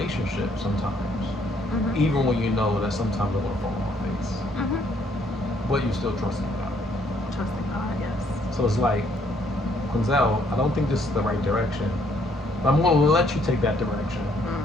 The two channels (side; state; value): both; normal; correlation 0.67